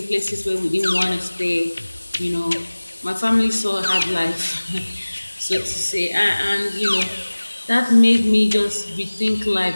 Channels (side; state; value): both; inverted; correlation -1.00